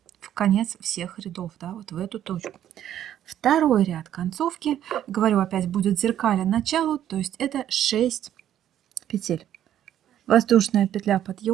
в конец всех рядов, да, вот в эту точку. Второй ряд концовки, говорю опять, будет зеркально началу, то есть это 6 петель. Воздушная петля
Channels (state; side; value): quieter; left; 11.1 dB